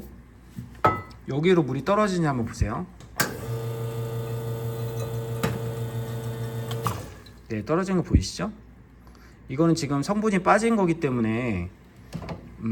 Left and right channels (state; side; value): identical; both; correlation 1.00